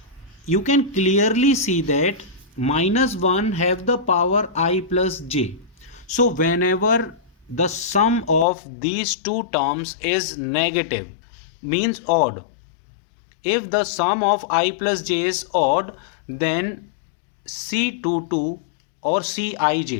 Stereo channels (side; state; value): right; drops out; at 8.5 s